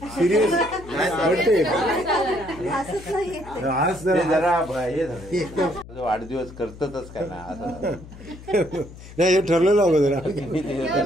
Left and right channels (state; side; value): noise; left; hum, 17 dB below the sound